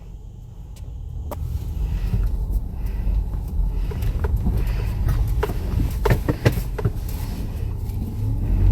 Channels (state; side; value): identical; both; correlation 1.00